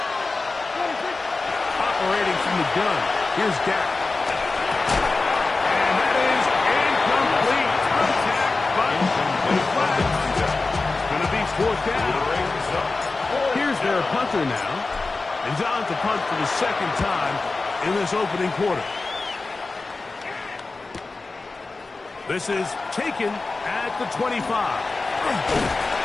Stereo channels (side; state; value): right; quieter; 3.7 dB